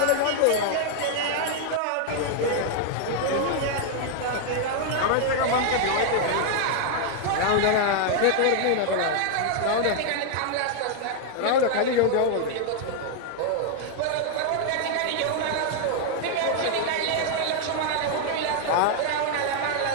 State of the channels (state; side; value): different; both; correlation 0.00